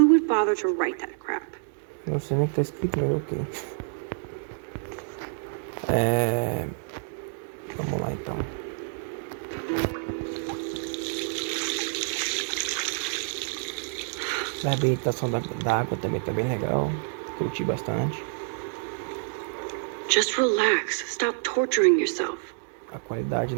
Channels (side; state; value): left; silent; digital silence